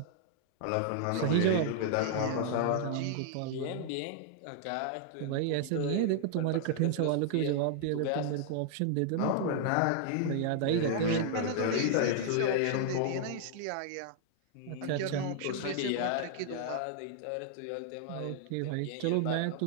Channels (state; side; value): different; both; correlation -0.01